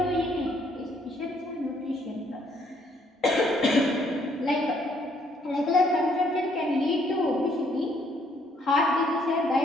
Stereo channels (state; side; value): normal; both; correlation 0.67